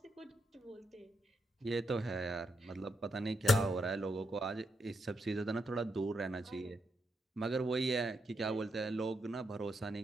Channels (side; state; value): both; normal; correlation 0.81